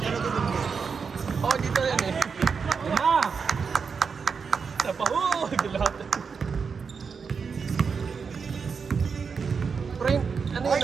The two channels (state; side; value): quieter; left; 5.7 dB